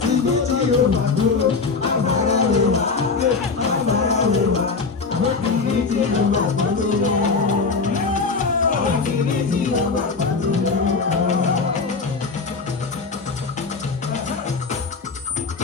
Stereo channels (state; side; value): quieter; right; 4.5 dB